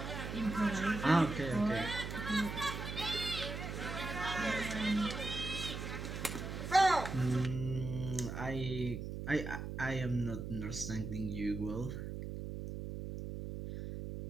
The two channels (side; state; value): right; noise; hum, 6 dB below the sound